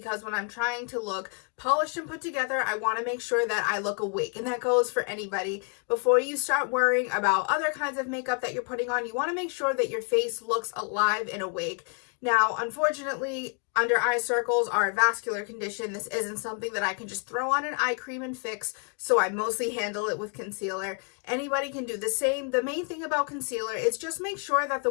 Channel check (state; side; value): quieter; right; 39.6 dB